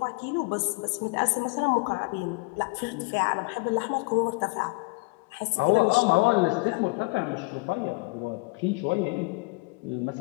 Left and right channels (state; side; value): quieter; right; 28.2 dB